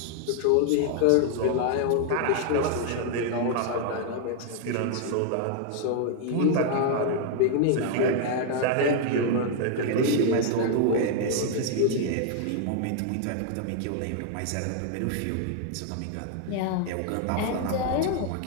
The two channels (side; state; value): both; different; correlation 0.00